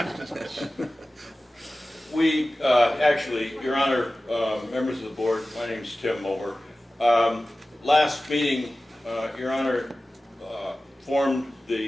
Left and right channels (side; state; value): both; normal; correlation 0.96